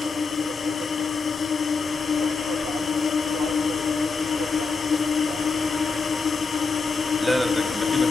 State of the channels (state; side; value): quieter; right; 4.4 dB